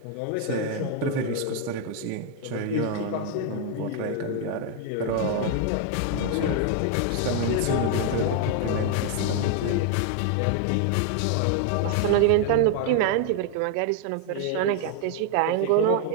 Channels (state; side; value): different; both; correlation 0.00